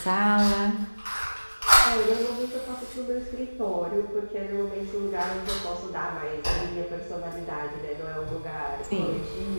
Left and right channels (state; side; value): inverted; both; correlation -1.00